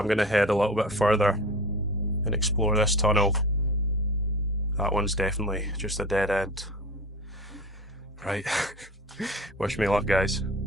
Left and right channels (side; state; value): both; normal; correlation 0.35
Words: gonna head a little bit further and explore this tunnel. That one's definitely just a dead end. Right, wish me luck, guys.